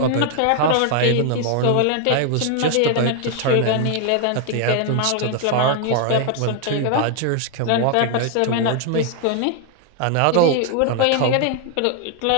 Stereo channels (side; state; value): both; different; correlation 0.00